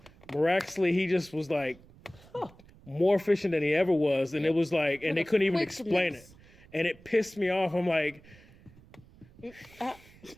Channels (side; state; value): right; noise; rumble, 24 dB below the sound